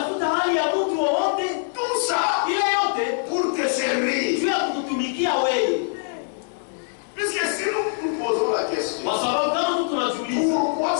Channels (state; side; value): silent; right; 62 dB below the other